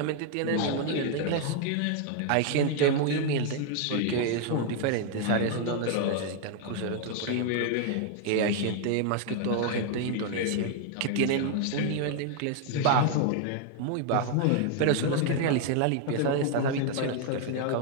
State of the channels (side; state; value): both; different; correlation 0.00